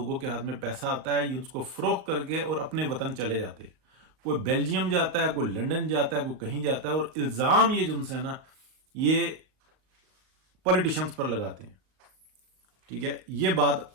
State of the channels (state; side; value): late; left; 38 ms